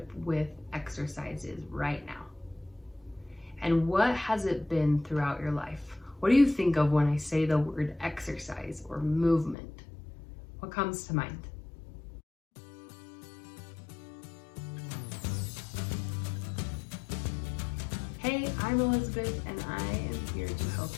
with exercise is right now. And what has it been throughout your life? What do you think of when I say the word exercise or movement? What comes to mind? Hey, I'm Elizabeth, and I am here to help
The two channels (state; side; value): drops out; right; at 9.6 s